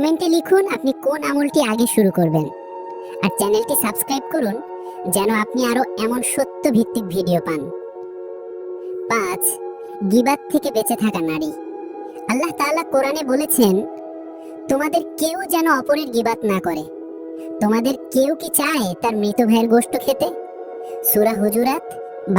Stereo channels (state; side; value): identical; both; correlation 1.00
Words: লিখুন আপনি কোন আমলটি আগে শুরু করবেন, আর চ্যানেলটি সাবস্ক্রাইব করুন যেন আপনি আরো এমন সত্য ভিত্তিক ভিডিও পান। 5. গীবাত থেকে বেঁচে থাকা নারী। আল্লাহ তাআলা কোরআনে বলেছেন, তোমাদের কেউ যেন অপরের গীবাত না করে। তোমাদের কেউ কি চায় তার মৃত ভাইয়ের গোশত খেতে? সূরা হুজুরাত